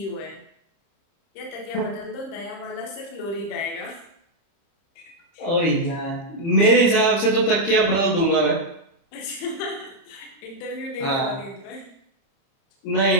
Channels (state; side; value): late; right; 30 ms